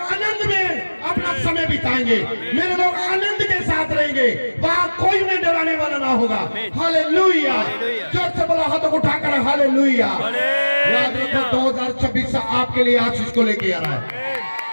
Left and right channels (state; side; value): inverted; both; correlation -1.00